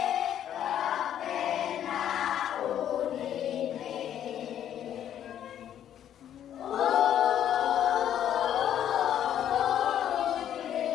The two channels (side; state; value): right; quieter; 10.4 dB